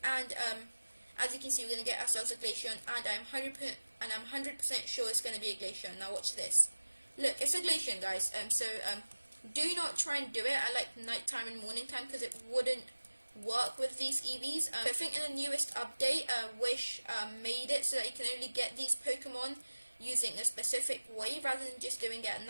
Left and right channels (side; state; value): both; inverted; correlation -1.00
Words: and as you can see we're going to get ourselves a Glaceon, and I'm 100% sure it's going to be a Glaceon. Now watch this. Look, it's a Glaceon, guys. So do not try and do it at like nighttime and morning time, because it wouldn't work with these Eevees. I think in the newest update, Wish made it so that you can only get these Pokemon using a specific way, rather than just doing it at